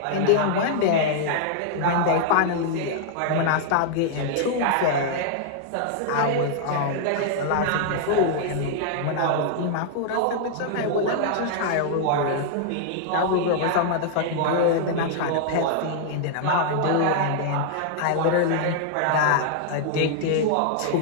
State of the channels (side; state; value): both; different; correlation -0.01